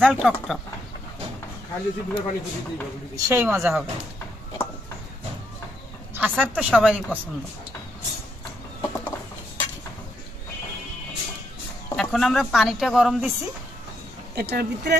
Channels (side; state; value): both; normal; correlation 0.77